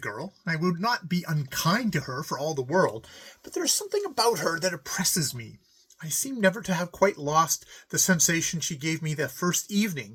and I would not be unkind to her for all the world, but there is something about her that oppresses me. I seem never to have quite lost the sensation she gave me the first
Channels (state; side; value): identical; both; correlation 1.00